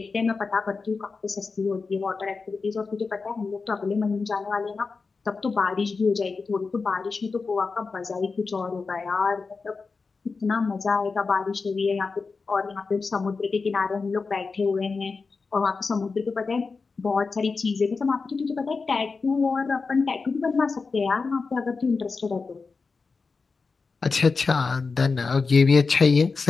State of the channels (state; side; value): quieter; right; 4.5 dB